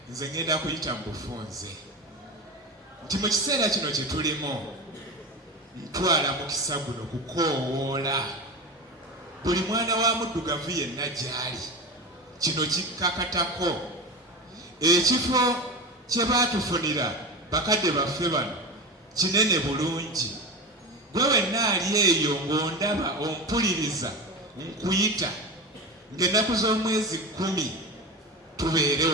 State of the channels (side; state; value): both; normal; correlation 0.25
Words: nze ngenda kuyita mu bufunze nti mu kiseera kino kye tulimu ntwala mukisa guno kukoowoola buli mwana wa muddugavu yenna gy'ali kino kikkakatako ekifo kye baatufunira bakadde baffe bano kinene bulungi gwe wenna ali eyo ng'ondaba ompuliriza nkuyita ng'ennaku z'omwezi 10 tubeere